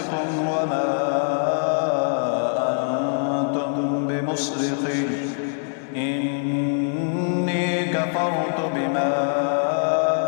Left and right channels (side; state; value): right; silent; digital silence